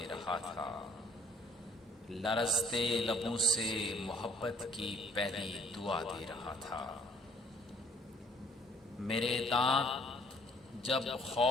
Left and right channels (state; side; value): normal; both; correlation 0.60